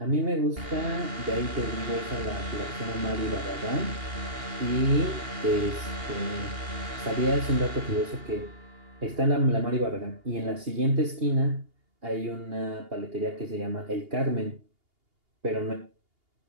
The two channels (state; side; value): late; left; 2.8 ms